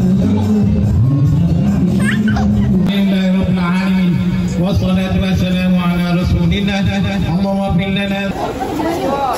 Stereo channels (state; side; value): identical; both; correlation 1.00